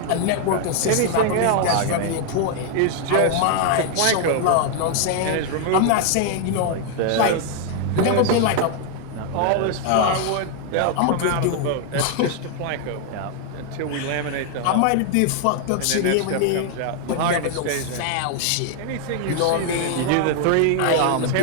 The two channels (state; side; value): different; both; correlation 0.00